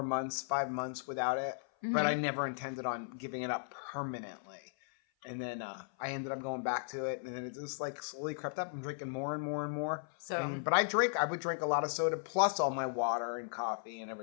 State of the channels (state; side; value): silent; right; 54 dB below the other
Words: months without it, but I never intended on giving it up permanently. And then I ended up going back to it, and then it just like slowly crept up. I'm drinking more and more and more. But I would drink a lot of soda plus all my water and coffee and